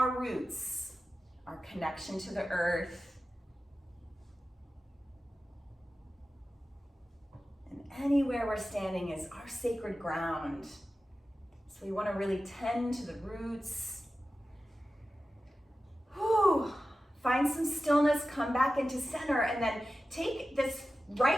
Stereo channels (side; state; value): both; normal; correlation 0.94